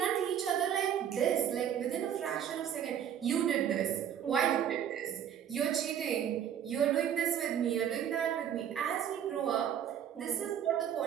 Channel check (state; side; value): quieter; left; 9.3 dB